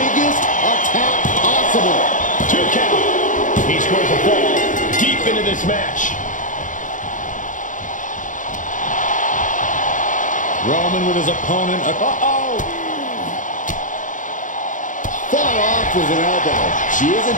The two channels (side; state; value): right; late; 0.37 ms